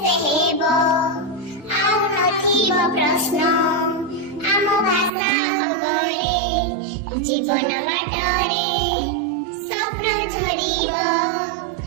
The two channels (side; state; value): left; drops out; at 5.1 s